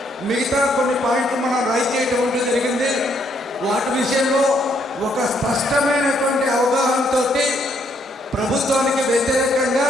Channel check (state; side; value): normal; both; correlation 0.71